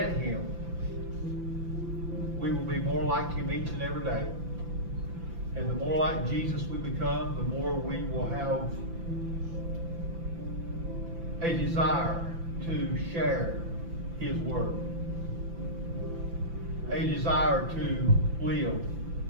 Him, we will be more like Him each and every day. And the more like Jesus we become, the more we will have a desire to share His Word. A desire to live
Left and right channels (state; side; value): late; left; 5.9 ms